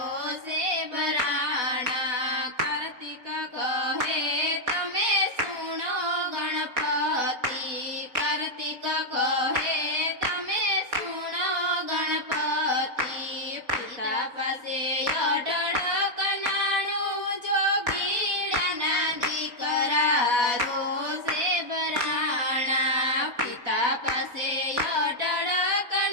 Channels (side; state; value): left; late; 4.1 ms